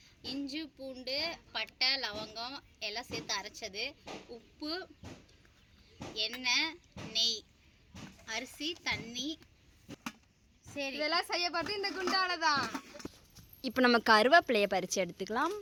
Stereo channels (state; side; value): identical; both; correlation 1.00